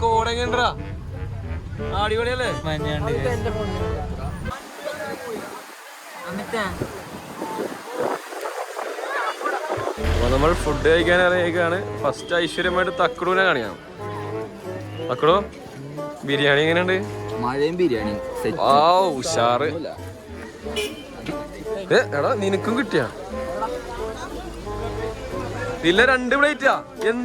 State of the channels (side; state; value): both; identical; correlation 1.00